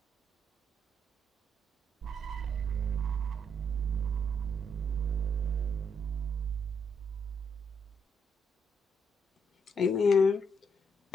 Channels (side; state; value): both; normal; correlation 0.75